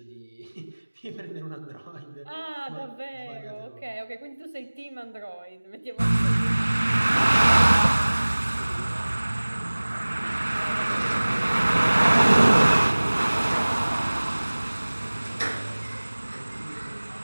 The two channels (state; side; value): inverted; both; correlation -1.00